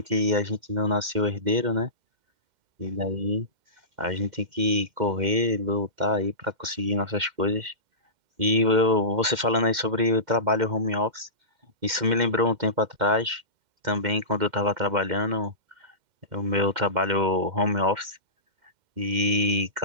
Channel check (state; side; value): late; left; 2.1 ms